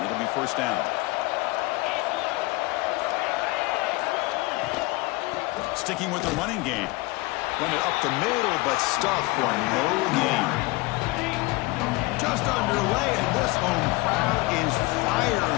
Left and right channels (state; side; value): quieter; right; 22.6 dB